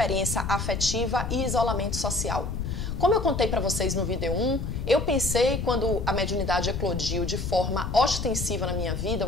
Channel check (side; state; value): left; noise; rumble, 3 dB below the sound